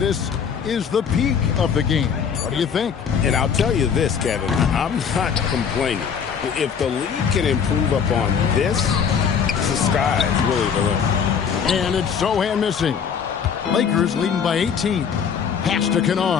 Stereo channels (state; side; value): quieter; right; 7.0 dB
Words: is the peak of the game. What do you think? And I'll tell you this, Kevin, I'm not complaining. If the league can improve upon this, the sky is really the limit. And it's Sohan missing. Lakers leading by 18. Pass to